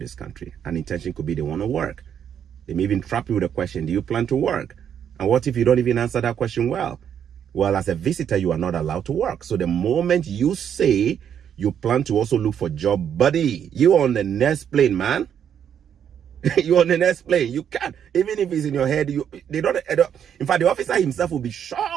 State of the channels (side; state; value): left; quieter; 8.7 dB